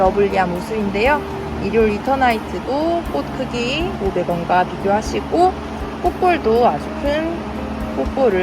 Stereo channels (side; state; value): both; identical; correlation 1.00